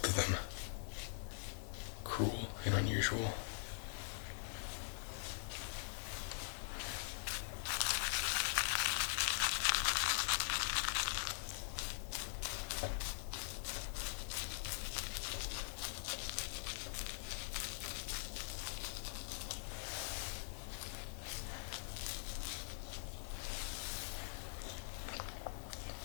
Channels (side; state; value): right; silent; digital silence